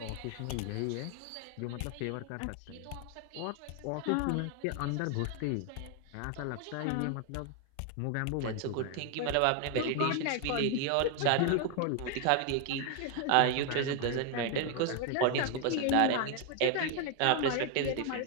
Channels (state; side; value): different; both; correlation 0.01